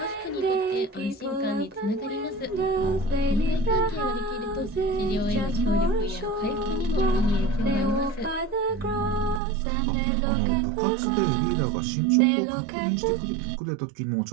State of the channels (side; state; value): left; drops out; at 9.4 s